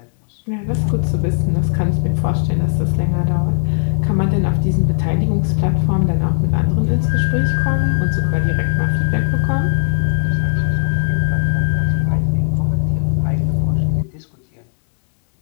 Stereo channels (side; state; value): right; silent; 68 dB below the other